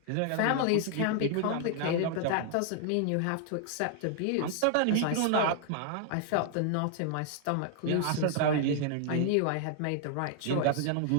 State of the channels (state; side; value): different; both; correlation 0.00